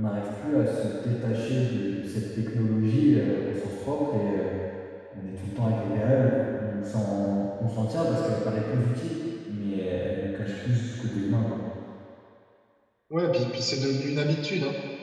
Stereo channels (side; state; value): both; identical; correlation 1.00